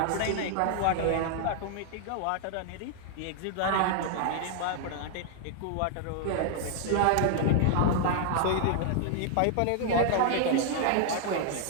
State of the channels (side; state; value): both; different; correlation 0.00